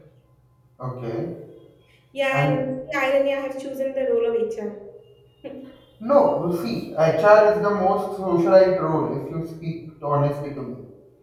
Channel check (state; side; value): identical; both; correlation 1.00